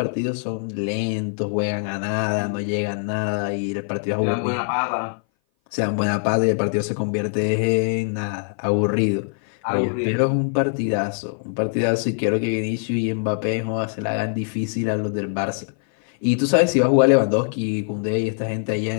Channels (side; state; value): right; silent; 58 dB below the other